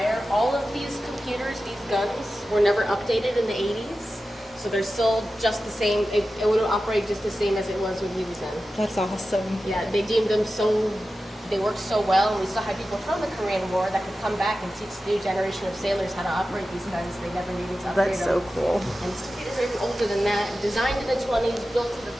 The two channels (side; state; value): both; normal; correlation 0.93